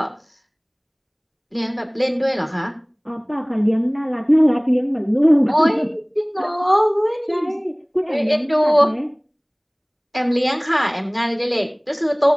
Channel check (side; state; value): both; identical; correlation 1.00